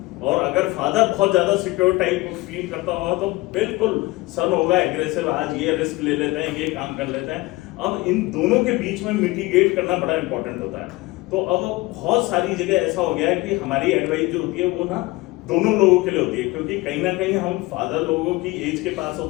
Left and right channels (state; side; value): quieter; right; 21.6 dB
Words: और अगर फादर बहुत ज्यादा सिक्योर टाइप फील करता होगा तो बिल्कुल सन होगा एग्रेसिव, आज ये रिस्क ले लेते हैं, ये काम कर लेते हैं. अब इन दोनों के बीच में मिटिगेट करना बड़ा इंपॉर्टेंट होता है. तो अब बहुत सारी जगह ऐसा हो गया है कि हमारी एडवाइस जो होती है वो ना दोनों लोगों के लिए होती है, क्योंकि कहीं ना कहीं हम फादर लोगों की एज के पास